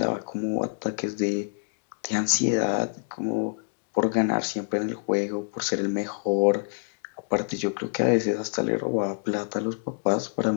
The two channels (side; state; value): right; silent; digital silence